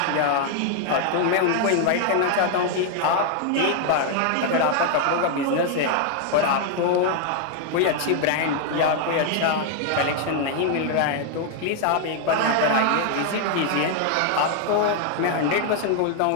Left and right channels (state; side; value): different; both; correlation 0.00